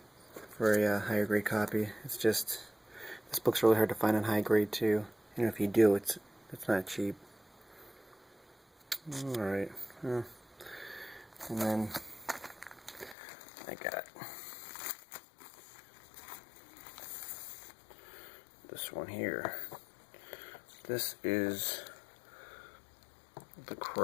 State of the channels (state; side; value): drops out; right; at 13.2 s